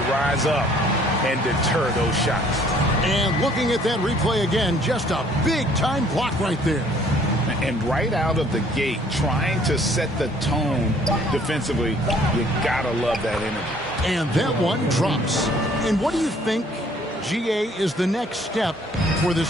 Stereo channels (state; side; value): normal; both; correlation 0.59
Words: rise up and deter those shots. And looking at that replay again, just a big-time block right there. And right out of the gate, trying to set the tone defensively, you gotta love that energy. And that one drops. And what do you think, GA, is the next step for